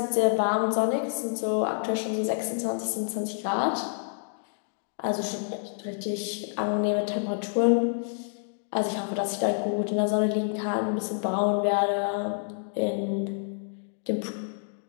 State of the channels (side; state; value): right; silent; digital silence